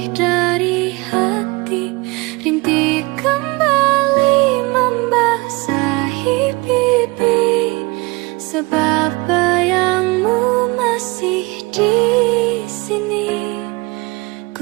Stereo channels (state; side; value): quieter; left; 24.7 dB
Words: dari hati. Rintik kembali membasahi pipi, sebab bayang